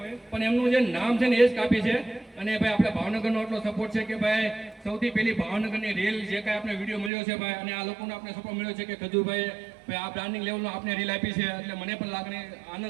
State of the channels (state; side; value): drops out; left; at 7.1 s